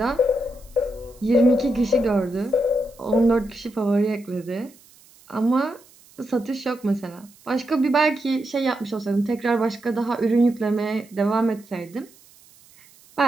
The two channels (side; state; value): right; noise; hiss, 27 dB below the sound